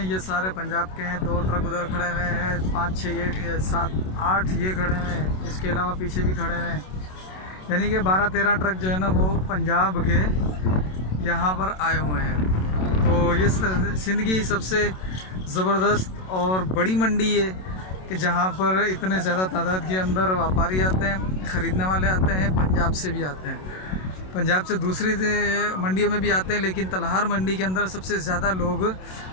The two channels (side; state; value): right; late; 27 ms